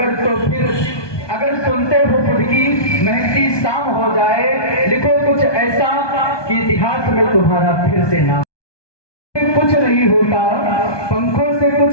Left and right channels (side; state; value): right; late; 1.2 ms